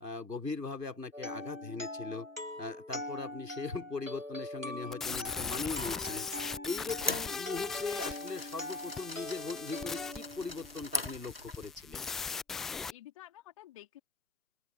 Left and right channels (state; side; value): quieter; right; 3.3 dB